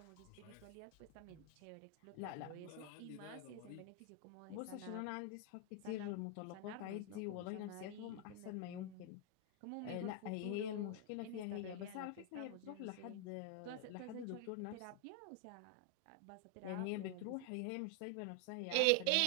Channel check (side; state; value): both; different; correlation 0.00